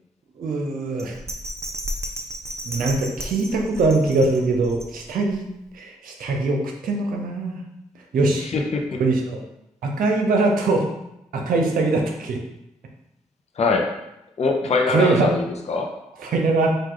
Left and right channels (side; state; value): both; normal; correlation 0.62